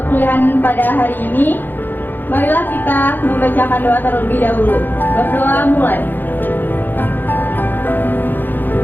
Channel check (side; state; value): right; late; 0.091 ms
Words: pada hari ini, marilah kita membacakan doa terlebih dahulu. Berdoa mulai.